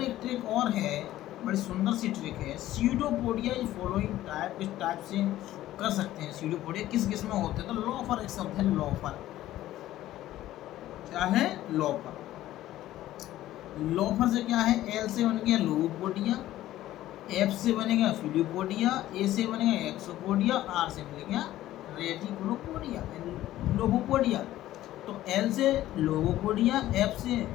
एक ट्रिक और है, बड़ी सुंदर सी ट्रिक है। स्यूडोपोडिया इस फॉलोइंग टाइप, इस टाइप से कर सकते हैं। स्यूडोपोडिया किस किस में होते हैं? तो लोफर एक शब्द है, लोफर। क्या है? लोफर। लोफर से क्या है? एल से बन गया लोगोपोडिया, एफ से बनेगा फिलियोपोडिया, ए से बनेगा एक्सोपोडिया, आर से बनेगा रेटिकुलोपोडिया, लोगोपोडिया। तो एल से लोगोपोडिया, एफ से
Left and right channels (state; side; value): quieter; right; 14.4 dB